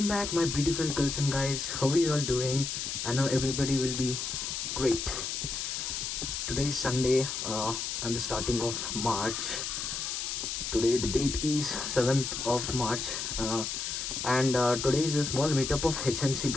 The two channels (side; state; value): left; noise; hiss, 3 dB below the sound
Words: back my beautiful girls and guys. How are you all doing? I know everybody will be great. Today is Sunday and the starting of March. Today the date is 7th of March and today is a small meetup of HNC